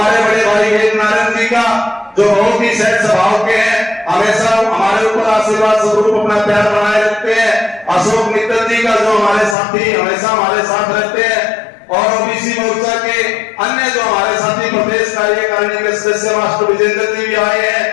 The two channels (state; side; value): drops out; right; at 9.6 s